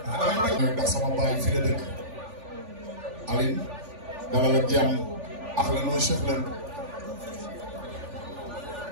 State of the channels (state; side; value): late; left; 3.4 ms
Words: ndax sama baay fi la dëkk Aline dalal ak jàmm ahlan wa sahlan